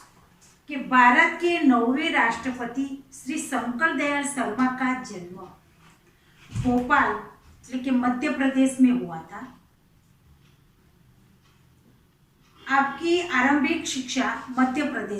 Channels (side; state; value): both; identical; correlation 1.00